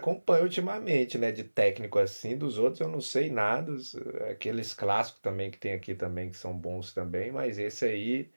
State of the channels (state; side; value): inverted; both; correlation -1.00